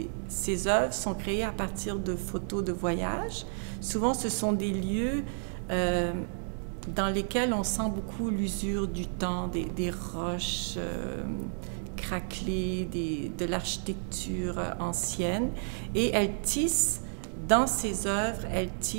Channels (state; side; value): silent; left; digital silence